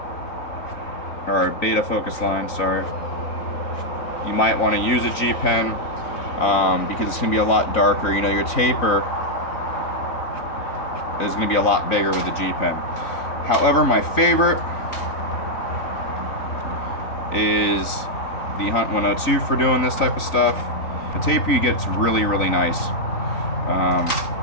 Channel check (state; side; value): late; right; 4.0 ms